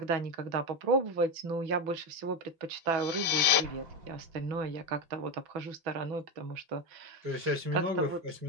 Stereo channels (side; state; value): left; late; 5.2 ms